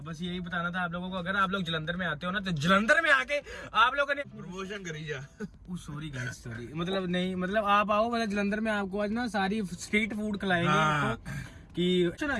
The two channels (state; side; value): identical; both; correlation 1.00